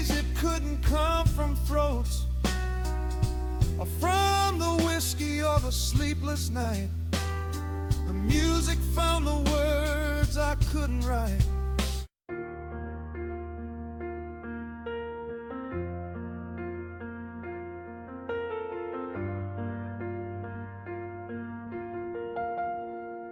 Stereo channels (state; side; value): identical; both; correlation 1.00